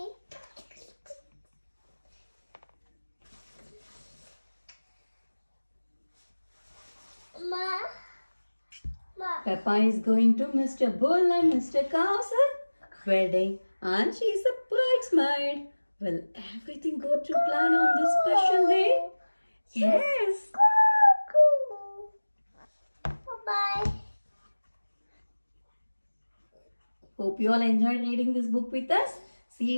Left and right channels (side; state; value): both; inverted; correlation -1.00